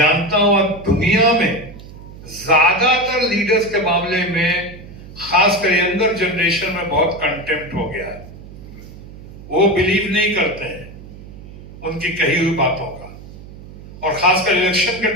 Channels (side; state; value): right; noise; hum, 16 dB below the sound